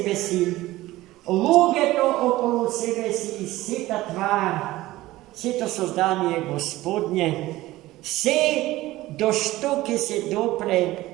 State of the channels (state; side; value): quieter; left; 17.3 dB